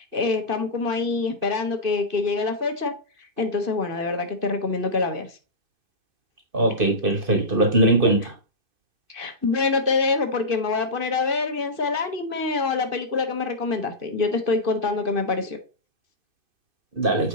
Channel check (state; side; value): late; left; 2.5 ms